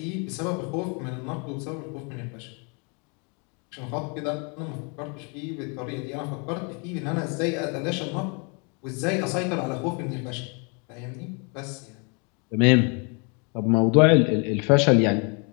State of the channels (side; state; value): right; quieter; 34.4 dB